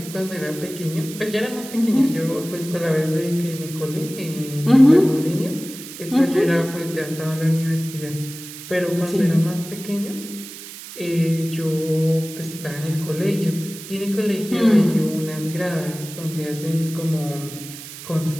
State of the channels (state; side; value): noise; right; hiss, 13 dB below the sound